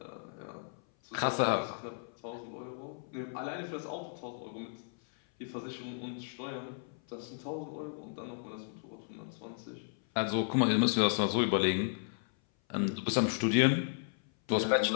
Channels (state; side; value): silent; right; 55 dB below the other